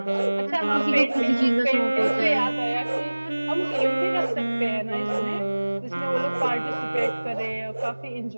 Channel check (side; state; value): both; inverted; correlation -1.00